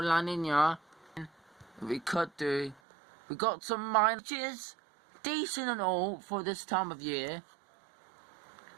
La Nina. We could do. We got some minus, decent and all for this time of year.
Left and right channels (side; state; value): left; drops out; at 2.8 s